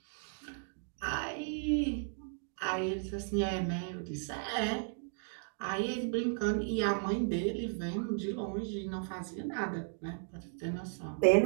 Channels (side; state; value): left; silent; digital silence